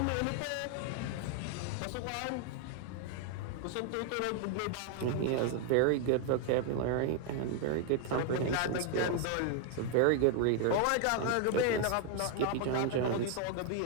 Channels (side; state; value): both; different; correlation 0.00